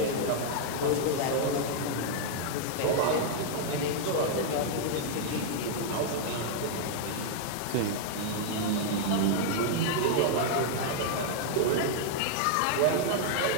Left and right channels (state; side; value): different; both; correlation -0.01